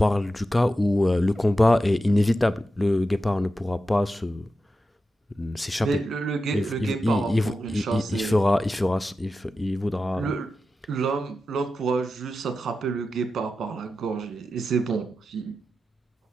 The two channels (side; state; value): both; normal; correlation 0.91